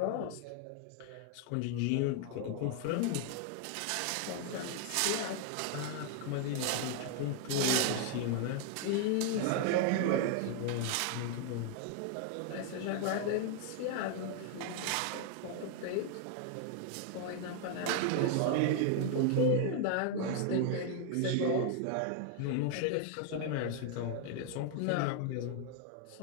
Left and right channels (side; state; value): both; different; correlation 0.00